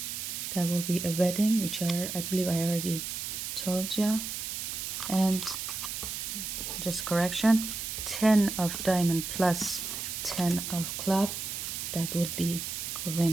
that will be a wedding, which I believe I already told you. And just correction, 10 of diamond plus 10 of club, that would be a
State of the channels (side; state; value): right; noise; hiss, 5 dB below the sound